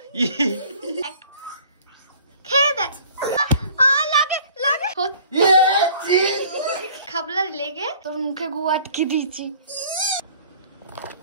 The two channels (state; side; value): inverted; both; correlation -0.51